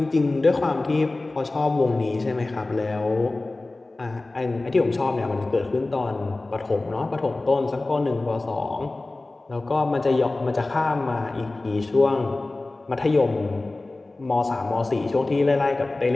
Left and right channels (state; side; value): quieter; right; 3.0 dB